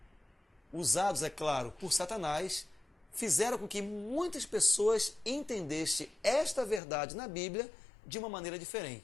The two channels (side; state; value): right; drops out; at 6.8 s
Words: Usados, é claro, por Satanás, fizeram com que muitas pessoas entendessem esta verdade na Bíblia de uma maneira